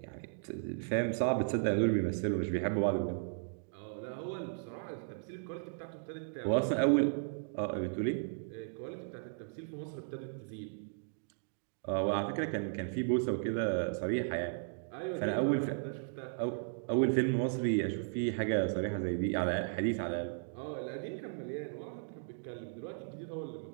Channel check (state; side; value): silent; left; digital silence